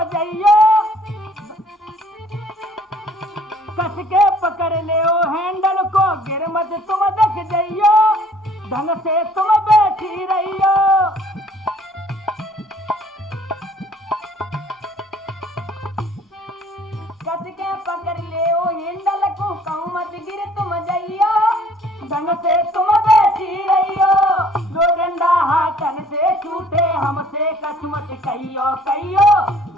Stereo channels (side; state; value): both; normal; correlation 0.56